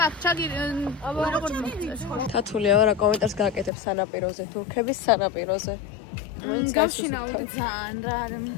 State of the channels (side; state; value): right; drops out; at 3.7 s